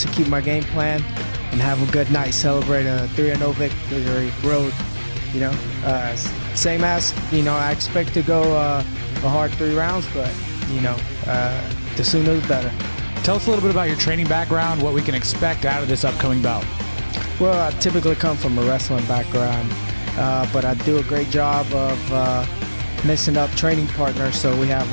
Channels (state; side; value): inverted; both; correlation -1.00